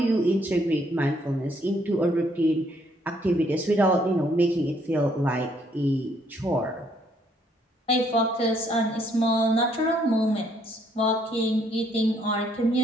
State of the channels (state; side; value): normal; both; correlation 0.68